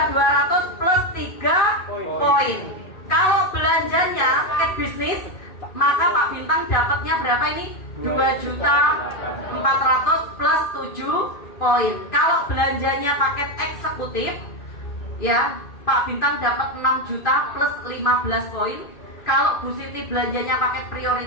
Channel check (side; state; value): right; late; 2.5 ms